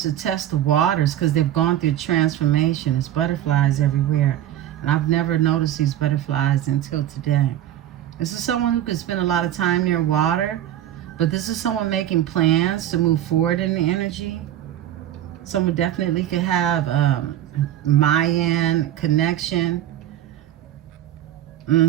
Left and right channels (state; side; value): quieter; left; 11.9 dB